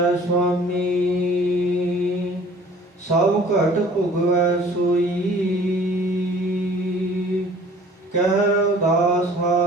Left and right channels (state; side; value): normal; both; correlation 0.51